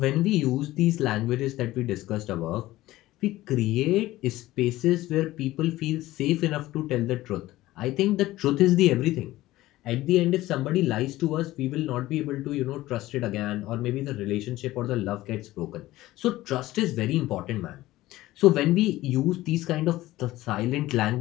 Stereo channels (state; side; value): quieter; right; 16.8 dB